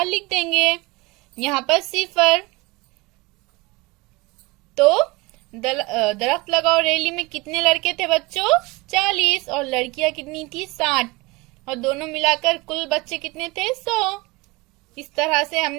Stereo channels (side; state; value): left; quieter; 23.8 dB